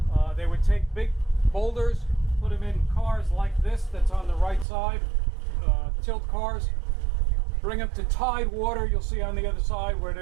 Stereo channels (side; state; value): left; drops out; at 4.7 s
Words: They would take big boulders, put them in cars like this that's on the right side, tilt cars, bring them to tide water. You'll see on the other side where